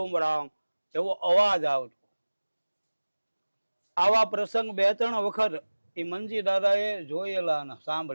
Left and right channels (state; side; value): inverted; both; correlation -1.00